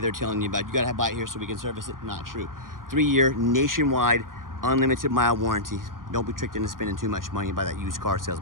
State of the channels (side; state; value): left; late; 0.91 ms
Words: telling you about. You gotta buy it here so we can service it. Not true. 3-year nationwide unlimited mile warranty. Don't be tricked into spending too much money by that used car